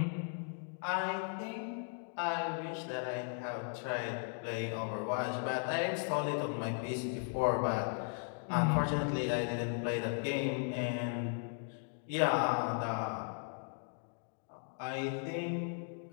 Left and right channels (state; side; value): silent; right; 53 dB below the other